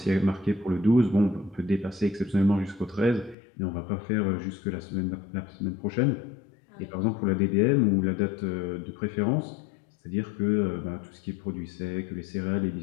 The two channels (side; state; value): right; drops out; at 3.4 s